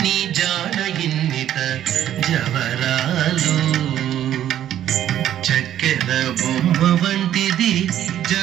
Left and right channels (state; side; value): quieter; left; 11.4 dB